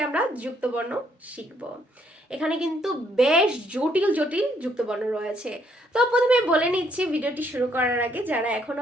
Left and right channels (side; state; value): both; normal; correlation 0.70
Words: আমরা যুক্তবর্ণ শিখব। এখানে কিন্তু বেশ জটিল জটিল যুক্তবর্ণ রয়েছে। তো প্রথমে বলে নিচ্ছি ভিডিওটি শুরু করার আগে, যারা